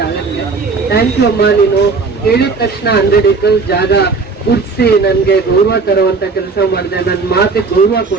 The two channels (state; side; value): quieter; left; 4.4 dB